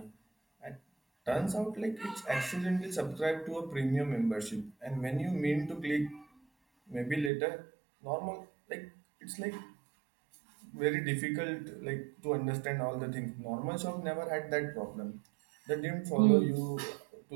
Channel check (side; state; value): left; drops out; at 7.3 s